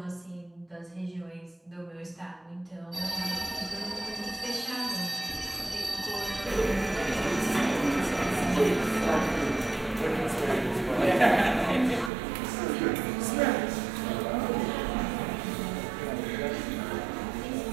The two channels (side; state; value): left; drops out; at 12.1 s